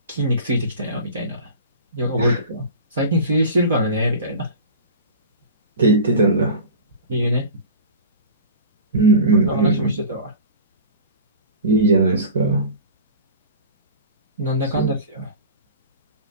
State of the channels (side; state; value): both; inverted; correlation -0.35